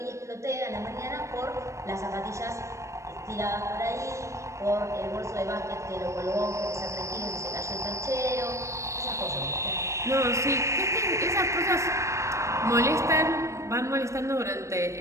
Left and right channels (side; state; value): left; late; 0.15 ms